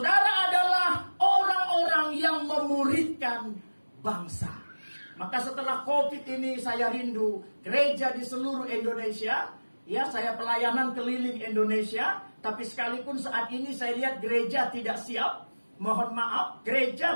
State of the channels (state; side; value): inverted; both; correlation -1.00